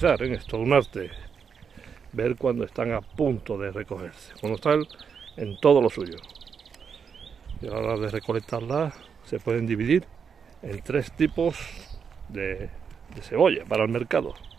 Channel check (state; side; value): quieter; left; 6.6 dB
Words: ¿eh? Es todo un arte ver cuando están a punto de recogerse, cuando están en todo lo suyo. Y a la hora de recolectarlas se pueden dividir en 3 tipos de cebolla para el mercado,